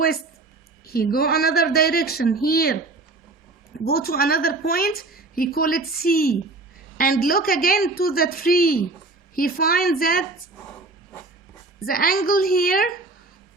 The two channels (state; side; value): quieter; left; 3.3 dB